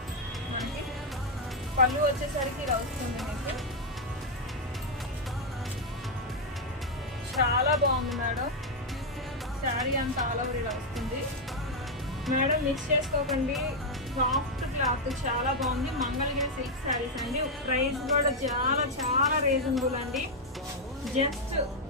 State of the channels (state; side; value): normal; both; correlation 0.00